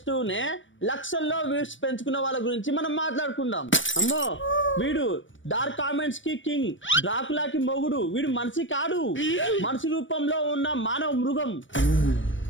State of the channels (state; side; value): late; right; 0.56 ms